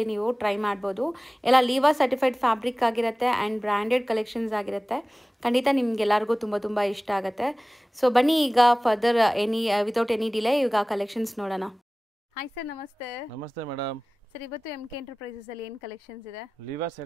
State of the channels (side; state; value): both; normal; correlation 0.98